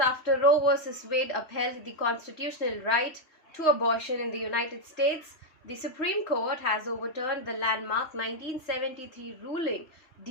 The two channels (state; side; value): late; right; 3.2 ms